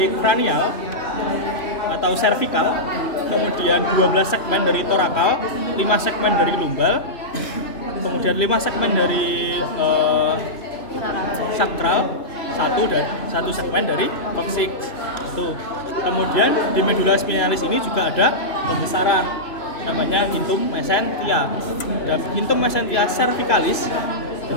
kranial atau cervical, kemudian 12 segmen dari torakal, 5 segmen dari lumbal, kemudian 5 segmen dari sakral, 1 segmen dari coccyx. Tuh. Kemudian di medula spinalis ini juga ada pembesaran namanya intum mesentia. Dan intum mesentia cervicalis.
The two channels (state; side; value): late; right; 2.9 ms